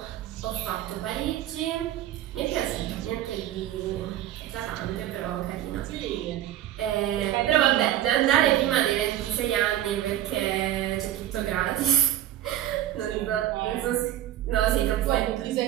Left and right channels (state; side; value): quieter; left; 12.6 dB